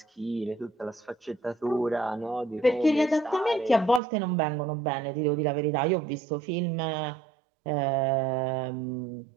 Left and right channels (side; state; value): left; drops out; at 4.0 s